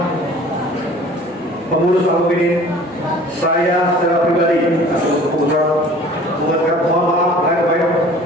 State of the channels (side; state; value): both; normal; correlation 0.47